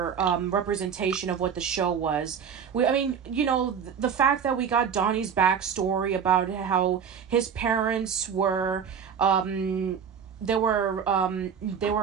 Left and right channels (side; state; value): left; quieter; 7.3 dB